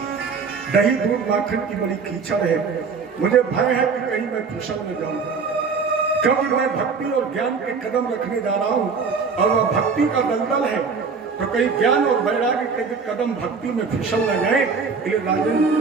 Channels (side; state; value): left; quieter; 5.2 dB